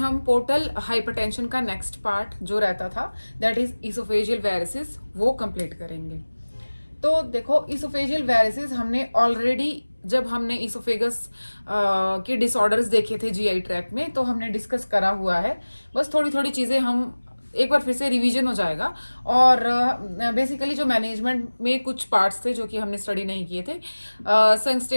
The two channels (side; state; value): both; inverted; correlation -1.00